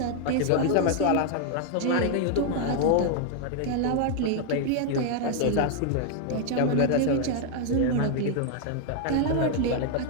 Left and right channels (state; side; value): different; both; correlation 0.00